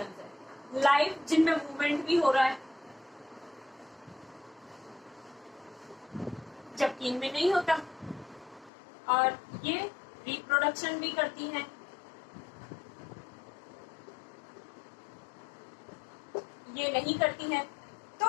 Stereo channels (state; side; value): drops out; right; at 8.7 s